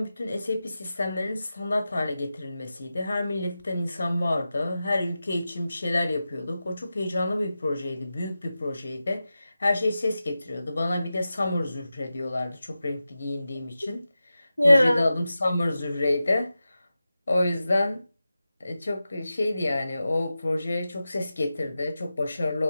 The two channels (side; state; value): both; inverted; correlation -0.93